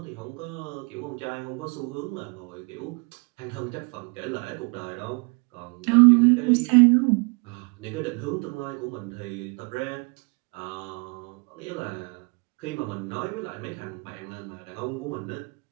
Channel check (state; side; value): quieter; left; 32.4 dB